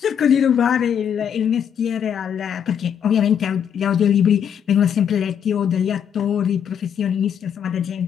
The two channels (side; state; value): right; quieter; 8.4 dB